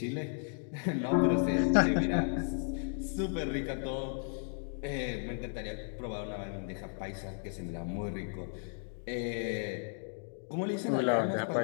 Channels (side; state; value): right; silent; 55 dB below the other